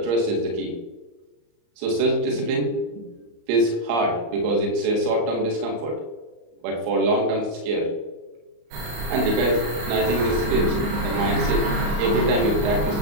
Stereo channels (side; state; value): left; late; 34 ms